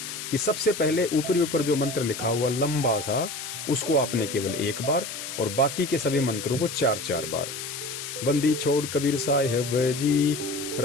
कि सबसे पहले ऊपरी ऊपर जो मंत्र लिखा हुआ लंबा सा, उसको आपने केवल एक बार और बाकी के सभी मंत्रों को 4-4 बार। बंदी छोड़ कबीर साहिब जी,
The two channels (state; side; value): noise; left; hiss, 8 dB below the sound